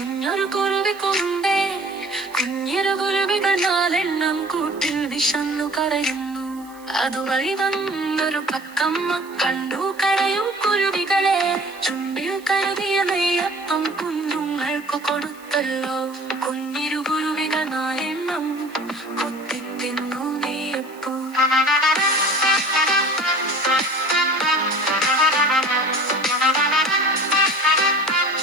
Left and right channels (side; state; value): right; noise; hiss, 25 dB below the sound